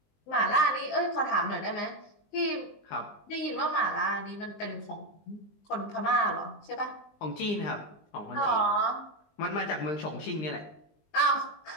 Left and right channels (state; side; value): late; right; 20 ms